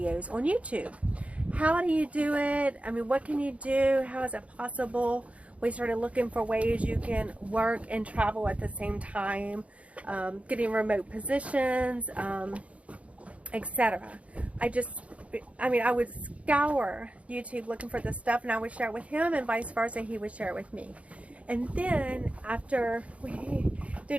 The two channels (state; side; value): late; left; 0.064 ms